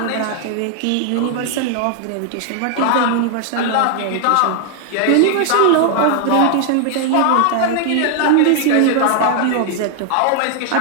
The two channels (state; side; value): different; both; correlation 0.00